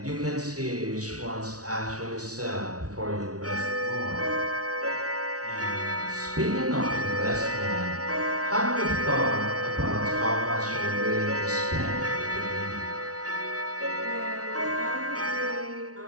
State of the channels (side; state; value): left; late; 0.67 ms